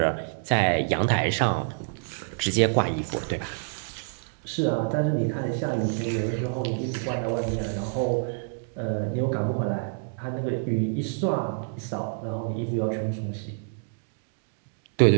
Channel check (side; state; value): left; silent; digital silence